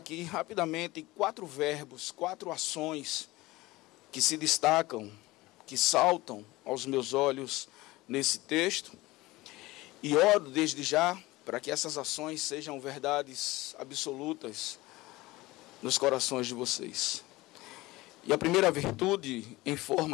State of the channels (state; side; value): quieter; right; 19.8 dB